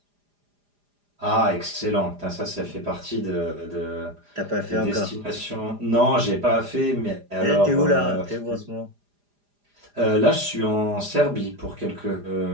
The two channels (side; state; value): left; late; 4.9 ms